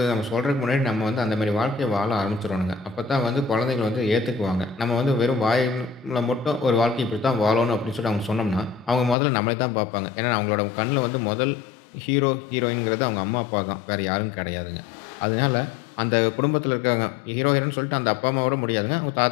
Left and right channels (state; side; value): drops out; right; at 9.2 s